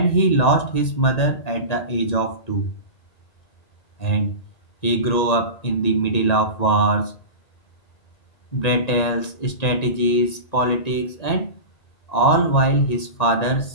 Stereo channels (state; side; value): late; right; 1.9 ms